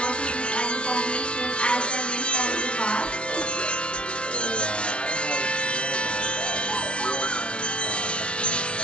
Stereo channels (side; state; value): right; late; 0.059 ms